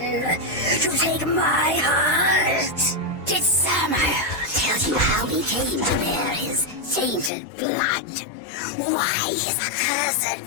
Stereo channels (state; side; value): drops out; right; at 7.3 s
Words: To take my heart? Did Samael tell you how he came to bear his tainted blood? Why his accursed